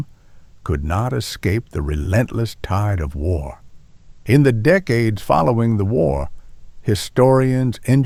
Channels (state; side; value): identical; both; correlation 1.00